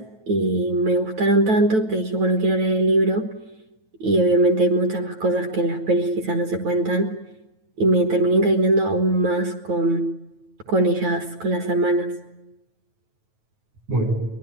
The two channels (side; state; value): left; late; 9.2 ms